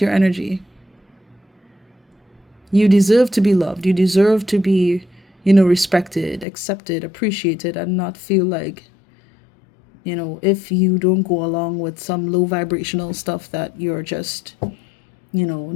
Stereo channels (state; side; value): drops out; right; at 6.5 s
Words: your energy. You deserve to be loved. You deserve to be, respected, accepted, appreciated, and not feel like, if you don't go along with some low vibrational stuff, that you're just,